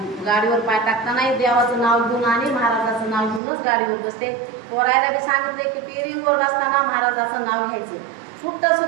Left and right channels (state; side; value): drops out; left; at 3.4 s